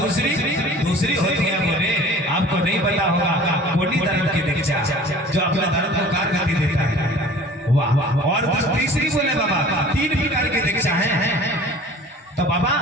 होती है बोले आपको नहीं पता होगा कोटि धर्म की दीक्षा, जो अपने धर्म को कारगति देता है। वाह वाह। और तीसरी बोले बाबा 3 प्रकार की दीक्षा है। तो बाबा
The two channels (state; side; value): normal; both; correlation 0.45